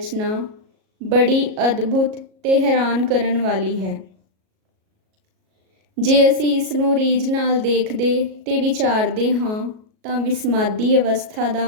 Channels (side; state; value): left; late; 37 ms